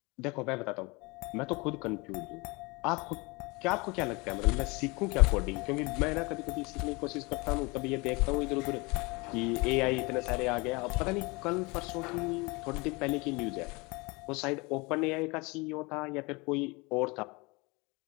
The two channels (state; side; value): quieter; right; 26.3 dB